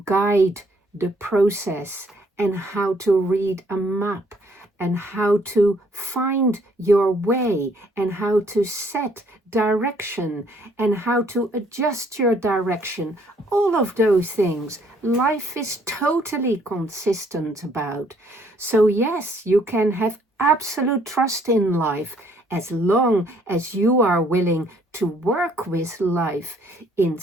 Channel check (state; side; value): normal; both; correlation 0.64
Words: guide the process, and how to read a map, and how to find your way, and how to set direction, and how to adjust your direction. All of those things life is totally consistent about. So yes, you can have absolute trust in life as long as you are willing to work with life